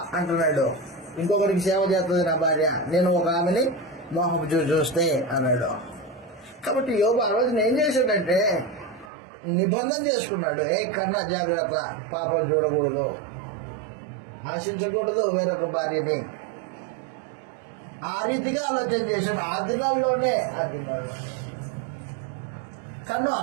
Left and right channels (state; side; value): drops out; left; at 9.1 s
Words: అంటున్నాడు. ఇంకొకరికి సేవ చేస్తుంది నా భార్య, నేను ఒక ఆమెని మోహపు చూస్తే అన్నాడు. కాబట్టి యోబు ఆ రోజున ఏం చేశాడంటే నిబంధన చేసుకున్నాడు. కన్నా జాగ్రత్త, పాపం చూడకూడదు, ఆశించకూడదు వేరొక భార్యని. ఆ రీతిగా ఆలోచన చేశాడు. ఆ దినాల్లోనే కన్ను